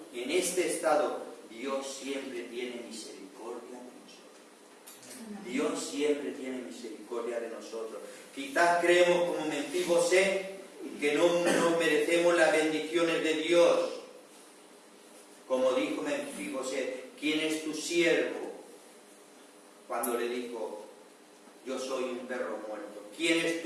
en este estado, Dios siempre tiene misericordia de nosotros. Dios siempre tiene misericordia de nosotros. Quizás creemos como Menfibosé que no merecemos las bendiciones de Dios. Como dijo Menfibosé, ¿quién es tu siervo? Cuando le dijo, yo soy un perro muerto. ¿Quién es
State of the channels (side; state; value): both; identical; correlation 1.00